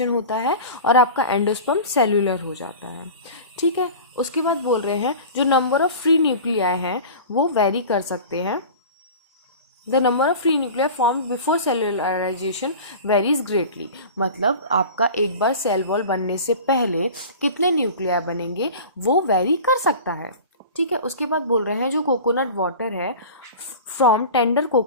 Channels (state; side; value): inverted; both; correlation -0.36